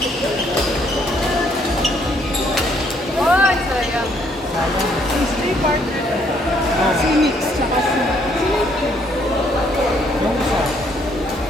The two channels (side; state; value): both; normal; correlation 0.67